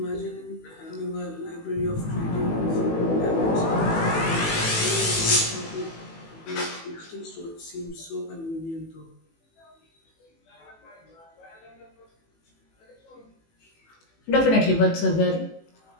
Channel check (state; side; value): late; right; 18 ms